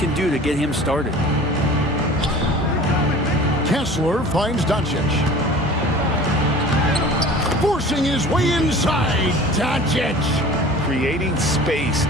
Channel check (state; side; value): normal; both; correlation 0.43